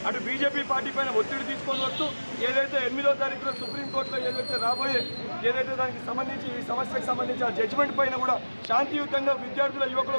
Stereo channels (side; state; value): both; inverted; correlation -1.00